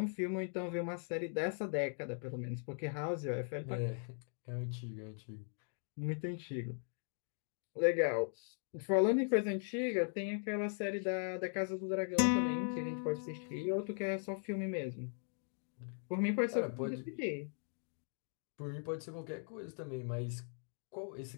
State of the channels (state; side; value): silent; right; 51 dB below the other